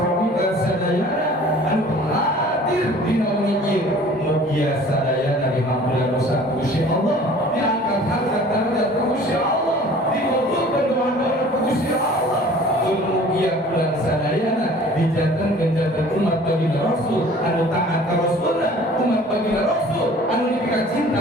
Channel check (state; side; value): normal; both; correlation 0.49